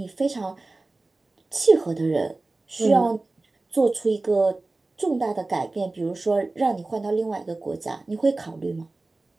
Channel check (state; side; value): quieter; left; 3.2 dB